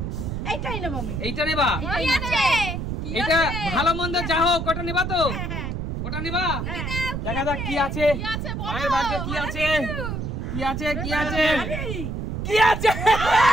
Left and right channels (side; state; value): right; noise; rumble, 4 dB below the sound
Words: এইটাই নেব আমি। এইটা নেবা? এটা ভালো মন্দ যা হোক, ওটা নেবা তো? ওটা নেবা? দেখা যাক কি আছে মায়ের ভাগ্যে। কি আছে? কি আছে? কি আছে? কি আছে?